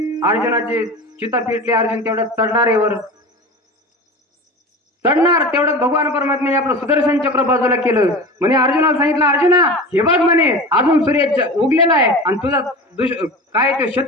अर्जुनाची चिता पेटली. अर्जुन तेवढ्यात चढणार तेवढ्यात भगवान परमात्म्याने आपलं सुदर्शन चक्र बाजूला केलं. म्हणे अर्जुनाला सांगितलं, अर्जुना हे बघ म्हणे अजून सूर्य उगलेला आहे आणि तुझा काय तो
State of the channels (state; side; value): normal; both; correlation 0.32